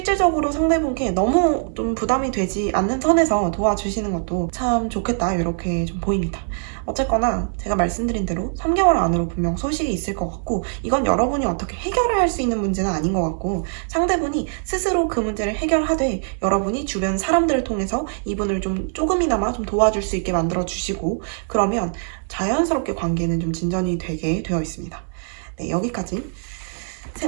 상대분께 너무 좀 부담이 되지 않는 선에서 도와주시는 것도 것도 참 좋겠다 이렇게 좀 보입니다. 어쨌거나 제가 말씀드린 대로 3개월 안으로 분명 소식이 있을 것 같고 이건 여러분이 어떻게 해결을 할 수 있는 문제는 아닌 것 같고 상대분이 스스로 그 문제를 해결하되 여러분이 주변 사람들을 통해서 이분을 좀 조금이나마 좀 도와줄 수 있게 만들어 주시고 그러면 자연스럽게 관계는 좀 진전이 되게 되어 있습니다. 네, 여기까지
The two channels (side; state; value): left; silent; digital silence